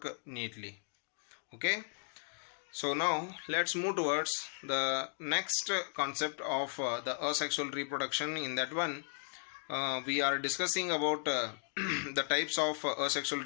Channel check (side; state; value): right; silent; digital silence